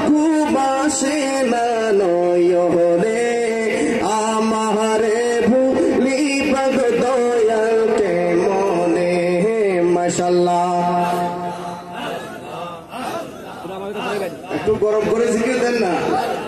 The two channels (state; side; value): identical; both; correlation 1.00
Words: ঘুমাসে না নয়নে আমারে ভুলিবা গো দয়াল কেমনে মাশাআল্লাহ একটু গরম করে জিকির দেন না